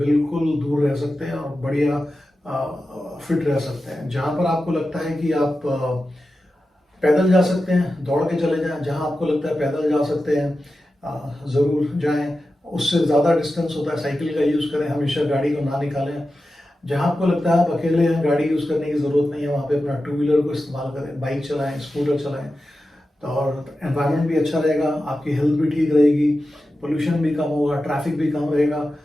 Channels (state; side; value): normal; both; correlation 0.92